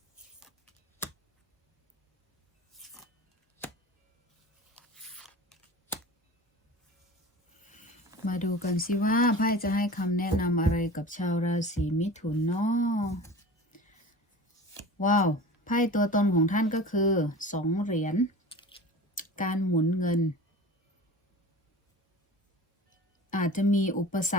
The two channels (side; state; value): both; normal; correlation 0.36